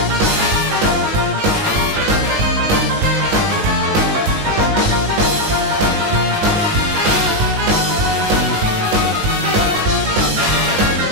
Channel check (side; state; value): left; late; 19 ms